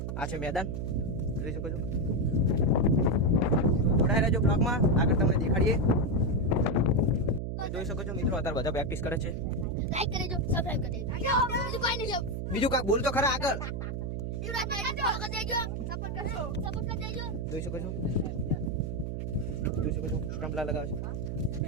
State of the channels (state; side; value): noise; right; hum, 3 dB below the sound